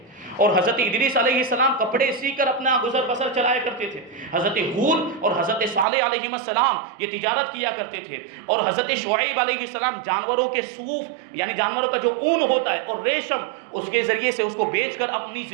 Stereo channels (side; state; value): left; drops out; at 5.9 s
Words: اور حضرت ادریس علیہ السلام کپڑے سی کر اپنا گزر بسر چلایا کرتے تھے۔ حضرت ہود اور حضرت صالح علیہ السلام یہ تجارت کیا کرتے تھے، اور حضرت شعیب علیہ السلام جانوروں کے صوف یعنی جانوروں کا جو اون ہوتا ہے اور ریشم، اس کے ذریعے سے اس کو بیچ کر اپنی